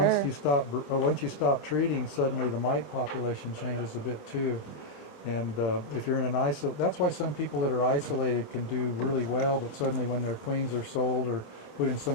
once you stop treating, suddenly the mite population changes a bit too. And if you're in an that's why some people that are isolated can do really well, but suddenly when their queens are sold or put in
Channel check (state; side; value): late; right; 26 ms